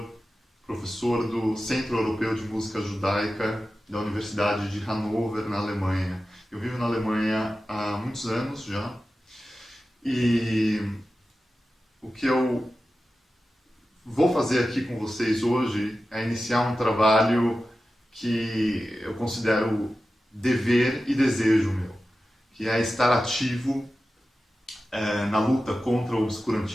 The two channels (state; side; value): normal; both; correlation 0.93